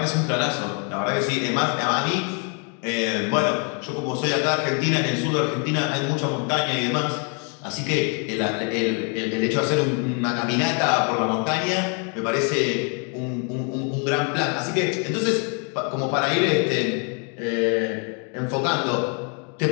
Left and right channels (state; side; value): quieter; right; 38.2 dB